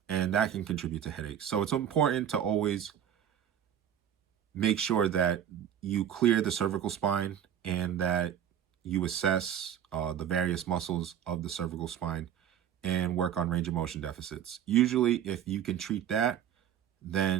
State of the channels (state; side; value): quieter; left; 9.7 dB